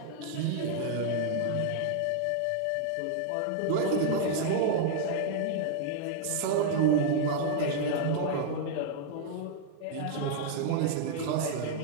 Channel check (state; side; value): different; both; correlation -0.01